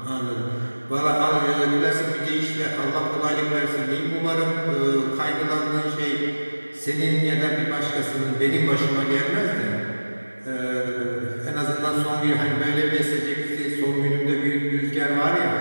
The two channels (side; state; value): both; inverted; correlation -1.00